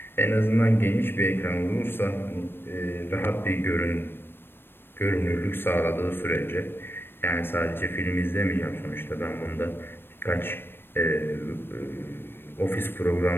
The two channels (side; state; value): right; late; 0.10 ms